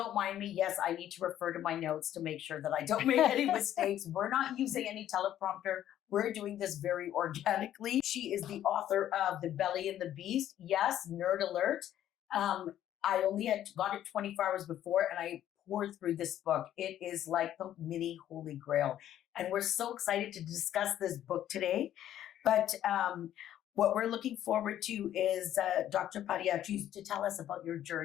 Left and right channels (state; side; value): quieter; right; 11.7 dB